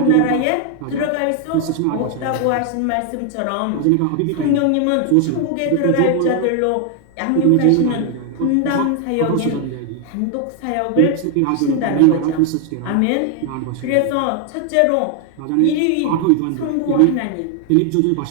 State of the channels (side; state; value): both; different; correlation 0.00